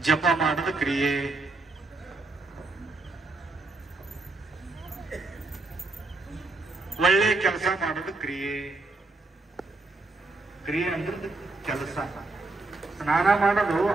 ಜಪ ಮಾಡೋದು ಕ್ರಿಯೆ, ಒಳ್ಳೆ ಕೆಲಸ ಮಾಡೋದು ಕ್ರಿಯೆ. ಕ್ರಿಯೆ ಅಂದ್ರೆ ಕೆಲಸ. ಸ್ನಾನ ಮಾಡೋದು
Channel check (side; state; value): left; quieter; 3.3 dB